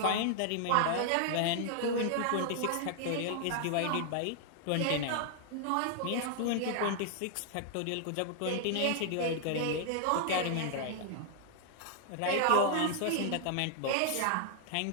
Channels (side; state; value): both; different; correlation 0.00